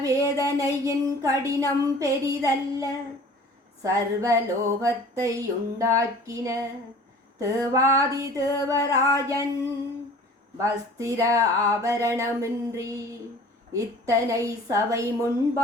வேதனையின் கடினம் பெரிதல்ல. சர்வலோகத்தை உண்டாக்கின தேவாதி தேவராஜன் வஸ்திர ஆபரணமின்றி இத்தனை சபை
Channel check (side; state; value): both; normal; correlation 0.45